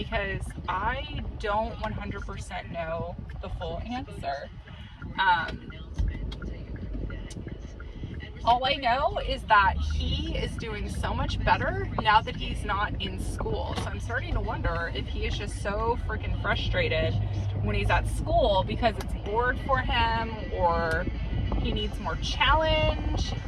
I don't 100% know the full answer. All I know is that he is doing so much better now that he's not in school. So I'm starting to wonder if he is just so freaking frustrated when he's at school because it's bored for him, or he needs more challenge,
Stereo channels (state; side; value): identical; both; correlation 1.00